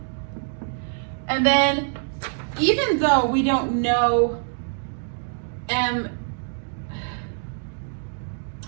And then even though we don't know and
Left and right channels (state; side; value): silent; left; digital silence